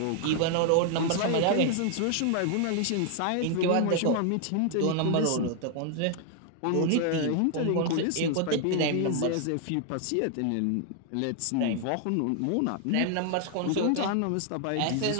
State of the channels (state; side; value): different; both; correlation 0.00